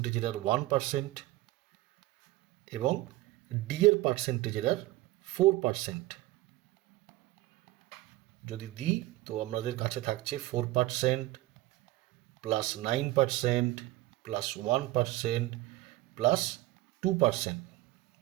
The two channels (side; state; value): left; quieter; 17.8 dB